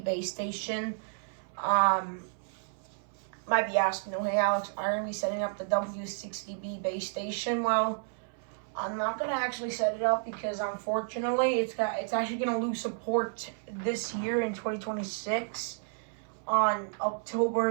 base station. Might be asking, oh, hey Alex, are you going to be setting up the W60B base station? Well, I'm not going to actually set it up because unfortunately it's actually going to lose support this year in 2026 on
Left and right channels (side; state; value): left; silent; 57 dB below the other